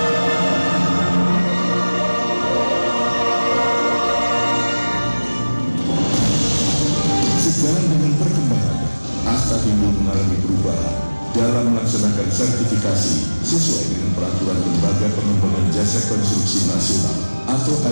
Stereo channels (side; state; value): both; inverted; correlation -1.00